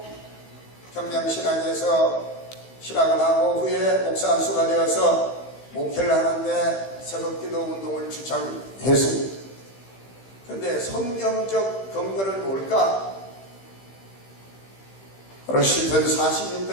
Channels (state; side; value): late; right; 15 ms